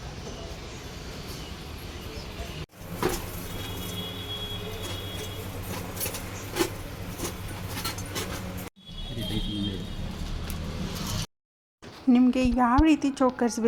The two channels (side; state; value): both; identical; correlation 1.00